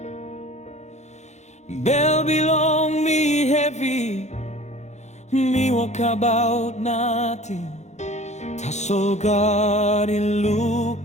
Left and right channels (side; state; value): right; late; 0.33 ms